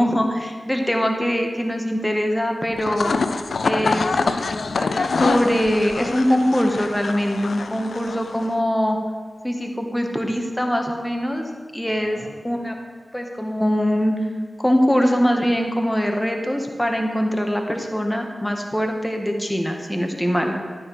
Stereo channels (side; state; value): both; normal; correlation 0.96